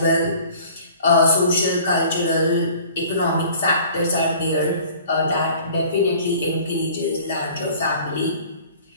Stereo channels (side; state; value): both; inverted; correlation -0.49